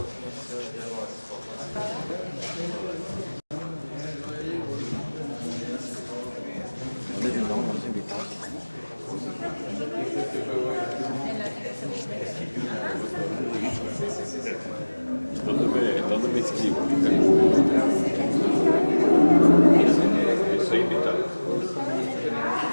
¿Dónde me inscribo? Soy invitado.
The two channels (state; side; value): inverted; both; correlation -1.00